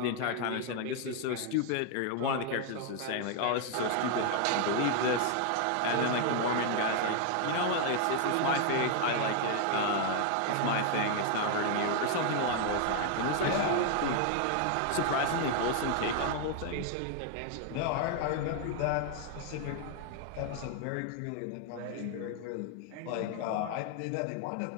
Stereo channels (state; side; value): different; both; correlation 0.00